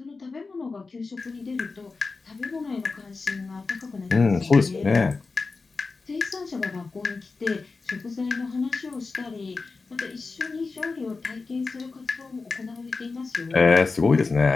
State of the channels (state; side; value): quieter; right; 4.1 dB